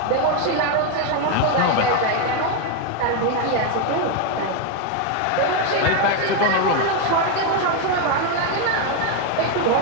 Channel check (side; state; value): both; different; correlation 0.02